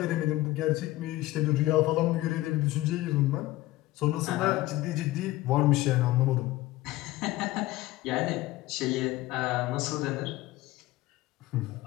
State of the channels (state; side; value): quieter; right; 17.6 dB